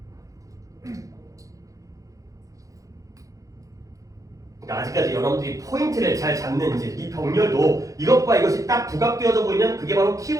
아직까지 여러분들이 포인트를 잘 잡는지 이 병렬도 이것과 이것이 딱 부각되어져 보이면 그게 바로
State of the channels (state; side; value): late; left; 0.16 ms